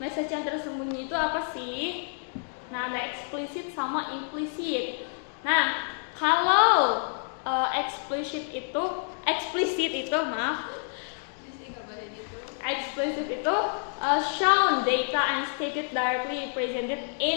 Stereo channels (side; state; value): right; silent; 58 dB below the other